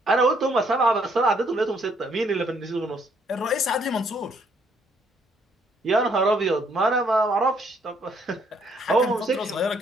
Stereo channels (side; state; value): both; normal; correlation 0.68